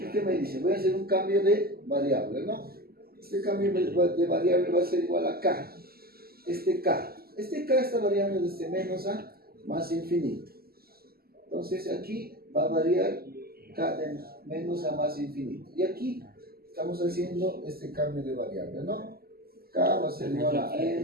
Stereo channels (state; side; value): late; left; 0.45 ms